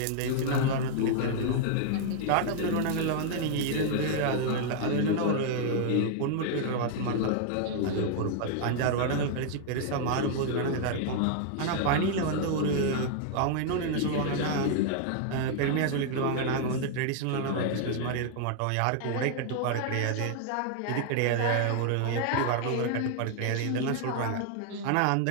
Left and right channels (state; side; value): different; both; correlation 0.00